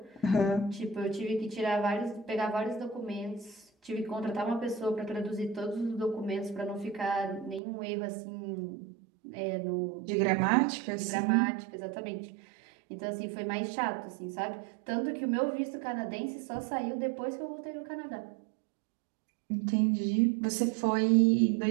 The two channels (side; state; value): left; drops out; at 7.6 s